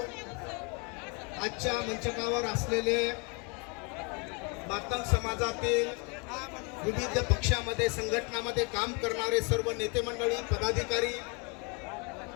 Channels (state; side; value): quieter; right; 32.8 dB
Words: आजच्या मंचकावर असलेले मातंग समाजातील विविध पक्षामध्ये संघटनामध्ये काम करणारे सर्व नेते मंडळी, पदाधिकारी